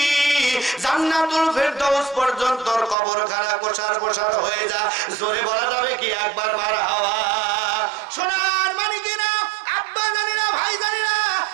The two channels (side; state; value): left; drops out; at 3.0 s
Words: জান্নাতুল ফেরদাউস পর্যন্ত কবরখানা প্রসার প্রসার হয়ে যা। জোরে বলা যাবে কি একবার মারহাবা? সোনার মানিকেরা, আব্বা জানেরা, ভাই জানেরা,